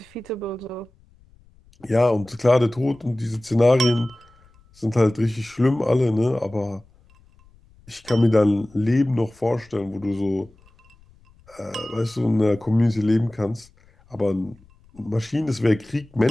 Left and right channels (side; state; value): left; noise; rumble, 29 dB below the sound